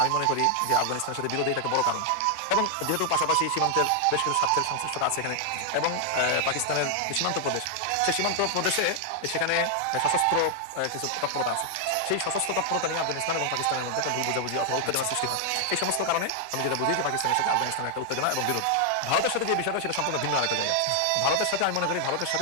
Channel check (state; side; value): different; both; correlation 0.00